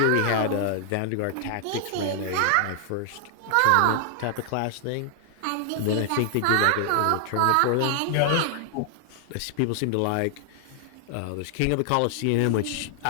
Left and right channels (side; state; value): both; different; correlation 0.00